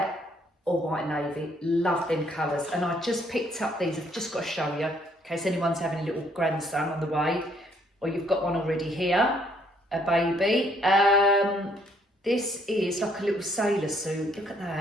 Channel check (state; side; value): normal; both; correlation 0.67